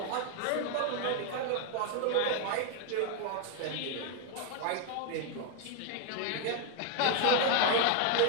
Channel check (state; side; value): different; both; correlation 0.00